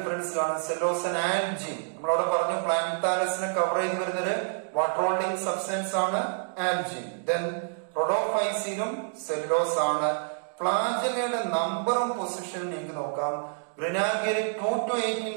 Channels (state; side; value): silent; left; digital silence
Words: കാണും, സെല്ലോസ് ആൻഡ് ആൽജിൻ. നമ്മളവിടെ പറഞ്ഞു പ്ലാന്താലസിനെ കവർ ചെയ്ത് വരുന്നൊരു വാട്ടർ ഹോൾഡിംഗ് സബ്സ്റ്റൻസ് ആണ് ആൽജിൻ. ദെൻ റോഡോഫൈസിലും സെല്ലുലോസ് ആണ്. ഫ്ലാജെല്ലയുടെ നമ്പറും പൊസിഷനും നിങ്ങൾക്ക് നോക്കാം. ഗ്രെനാൽഗയിൽ 2 to 18